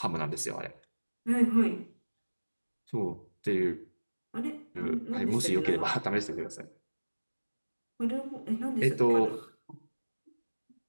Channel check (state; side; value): inverted; both; correlation -1.00